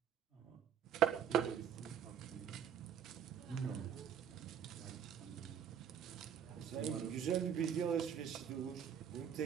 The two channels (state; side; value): quieter; left; 8.7 dB